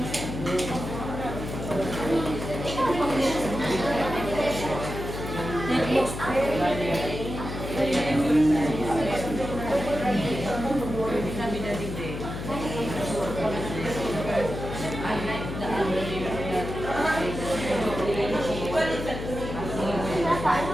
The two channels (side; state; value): left; noise; hum, 7 dB below the sound